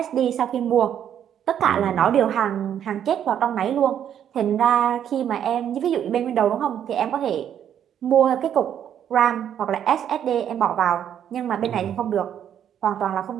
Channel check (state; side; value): quieter; left; 9.6 dB